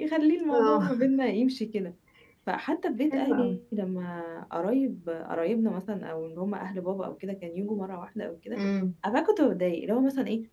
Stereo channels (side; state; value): both; identical; correlation 1.00